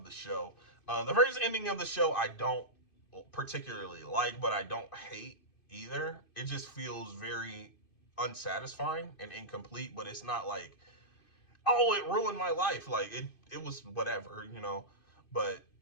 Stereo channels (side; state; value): right; late; 2.5 ms